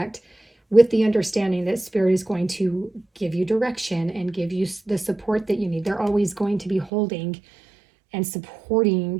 with the understanding that Spirit is going to give you direction and give you the support that you need. They're always going to be holding and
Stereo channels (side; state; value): left; drops out; at 6.9 s